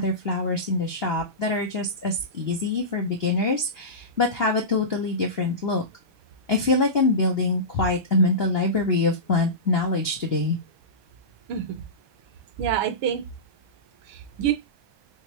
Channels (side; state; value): left; late; 1.2 ms